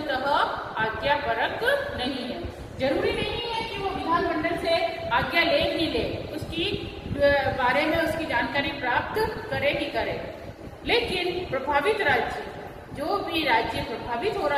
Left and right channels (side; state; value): both; identical; correlation 1.00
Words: आज्ञापरक नहीं है। जरूरी नहीं है कि वो विधानमंडल से आज्ञा ले ही ले, उसकी बारे में उसकी जानकारी प्राप्त करे ही करे, लेकिन प्रभावित राज्य, जो भी राज्य प्रभावित हो